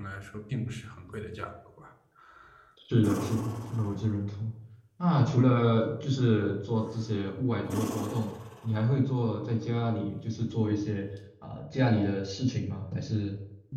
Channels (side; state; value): both; identical; correlation 1.00